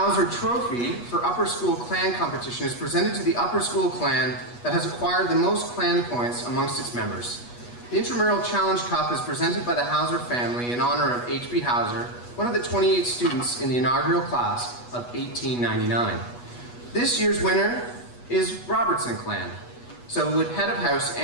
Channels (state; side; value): late; right; 8.2 ms